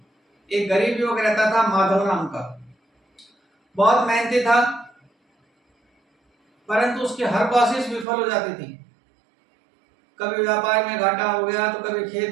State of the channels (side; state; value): left; drops out; at 8.1 s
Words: एक गरीब युवक रहता था, माधव नाम का। बहुत मेहनती था, परंतु उसकी हर कोशिश विफल हो जाती थी। कभी व्यापार में घाटा हो गया तो कभी